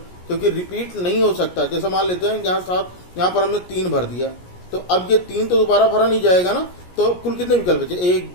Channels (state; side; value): late; right; 17 ms